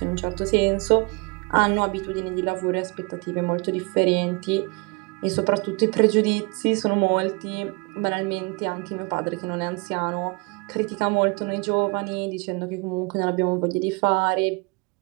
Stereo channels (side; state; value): left; quieter; 30.1 dB